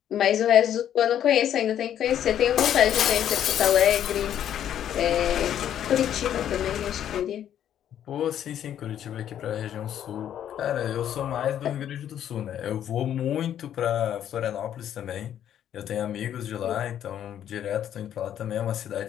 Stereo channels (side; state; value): right; quieter; 10.3 dB